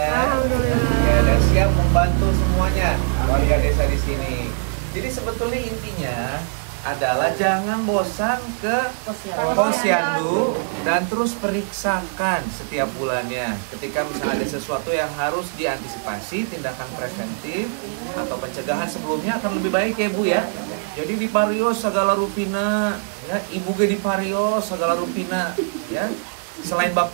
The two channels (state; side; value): silent; left; digital silence